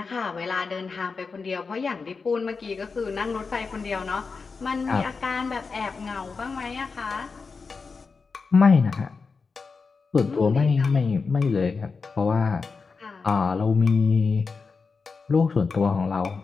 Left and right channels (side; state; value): right; quieter; 4.7 dB